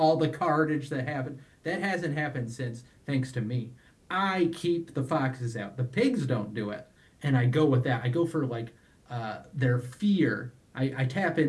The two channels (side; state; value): both; identical; correlation 1.00